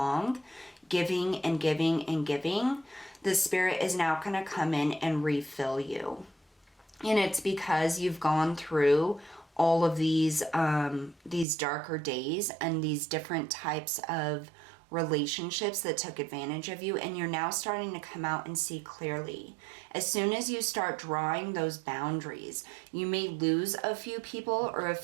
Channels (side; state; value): left; drops out; at 11.5 s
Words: giving and giving and giving. The Spirit is now going to come in and refill you. And it's because you've gone through all of these darker days and these different types of relationships that took advantage of you, and you're now starting to come out and see clearly. As soon as you start drawing those boundaries, you may lose a few people or a